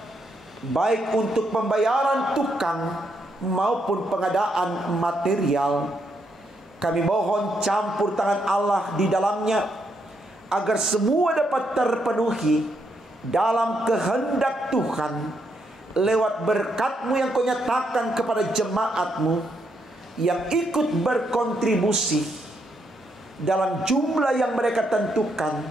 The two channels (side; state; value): both; normal; correlation 0.77